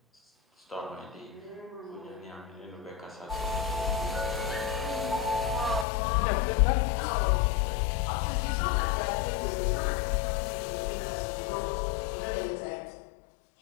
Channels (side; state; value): right; drops out; at 5.9 s